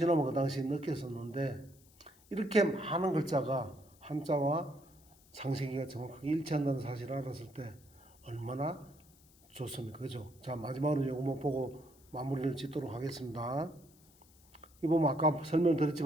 그 당시에 느꼈었는데 이렇게 많은 글자가 한자와 창세기가 정확하게 일치한다는 사실을 알았을 때 얼마나 좋습니까? 그죠? 자, 마지막으로 이것만 보고 마무리를 짓도록 하겠습니다. 이 보면 아까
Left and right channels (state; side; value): noise; left; hiss, 28 dB below the sound